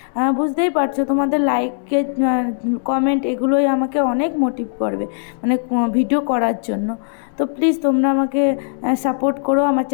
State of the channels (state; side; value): silent; right; 67 dB below the other